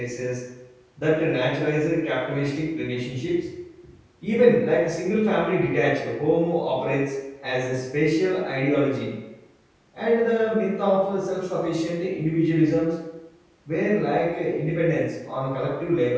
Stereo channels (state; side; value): identical; both; correlation 1.00